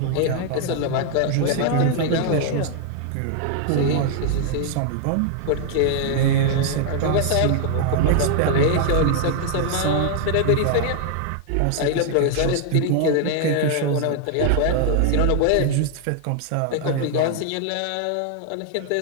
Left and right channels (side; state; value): both; different; correlation 0.00